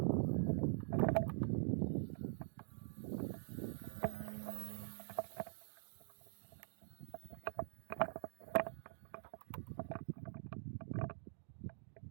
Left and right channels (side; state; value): left; silent; digital silence